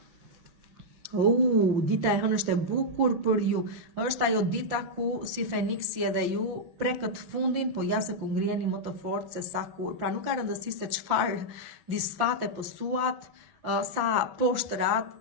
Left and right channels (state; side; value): late; left; 5.7 ms